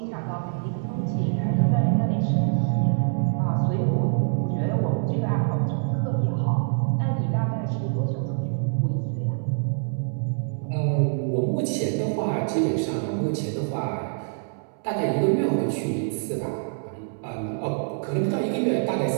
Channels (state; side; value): silent; left; 62 dB below the other